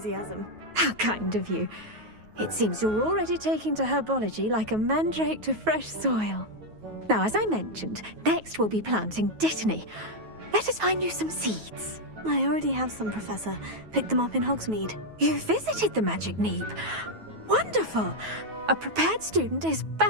How kind of you. It seems you're already taking to herbology like a mandrake to fresh soil. Now, as I mentioned, next we'll be planting Dittany. Let us find you some seeds. I already have some, Professor. Picked them up in Hogsmeade. You visited the Magic Neep. Wonderful! A prepared student is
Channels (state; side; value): late; left; 9.3 ms